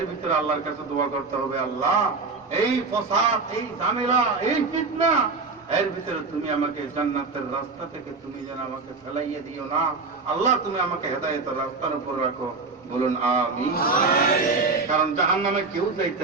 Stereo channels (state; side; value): quieter; left; 4.1 dB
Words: ভিতরে আল্লাহর কাছে দোয়া করতে হবে, আল্লাহ এই ফসাদ, এই ঝামেলা, এই ফিতনা এর ভিতরে তুমি আমাকে জান্নাতের রাস্তা থেকে তুমি যেন আমাকে ফেলাইয়ে দিও না। আল্লাহ তুমি আমাকে হেদায়েতের রাস্তার উপর রাখো। বলুন আমিন। কারণ জাহান্নামে কেউ যাইতে